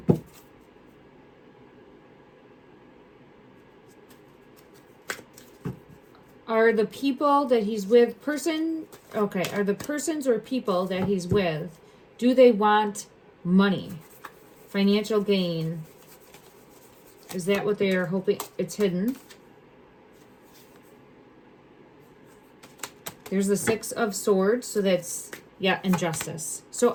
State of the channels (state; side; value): identical; both; correlation 1.00